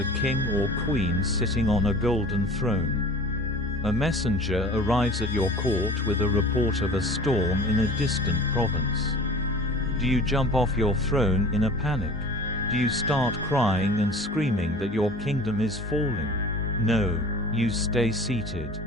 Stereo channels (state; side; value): normal; both; correlation 0.42